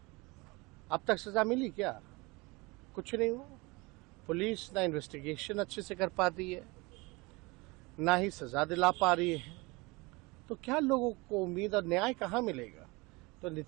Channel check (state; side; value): quieter; left; 25.0 dB